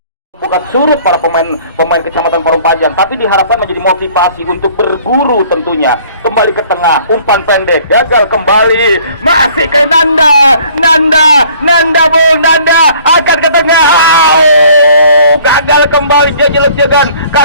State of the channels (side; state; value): both; inverted; correlation -0.55